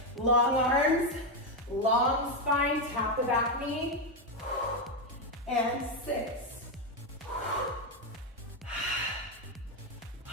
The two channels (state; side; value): normal; both; correlation 0.06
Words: long arms, long spine, tap the back knee. And 6.